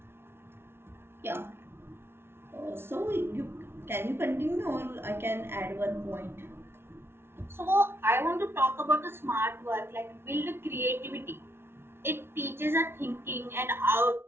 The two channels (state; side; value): late; left; 0.12 ms